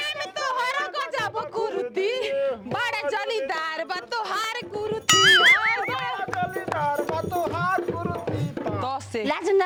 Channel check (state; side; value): identical; both; correlation 1.00